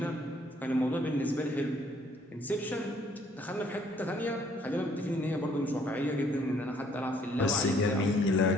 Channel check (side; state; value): both; normal; correlation 0.63